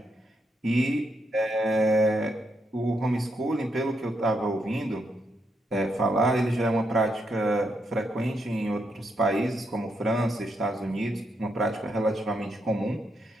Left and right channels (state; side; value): normal; both; correlation 0.80